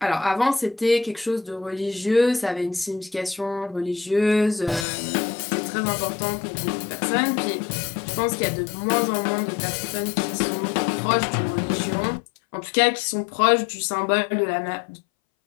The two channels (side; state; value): right; drops out; at 4.9 s